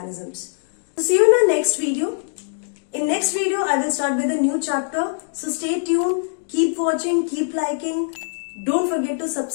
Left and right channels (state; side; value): silent; right; digital silence